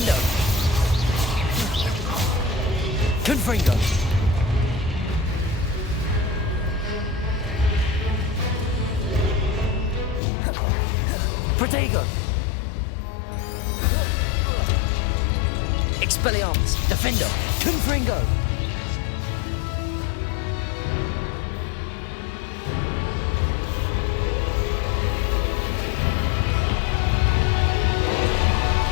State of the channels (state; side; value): drops out; right; at 10.2 s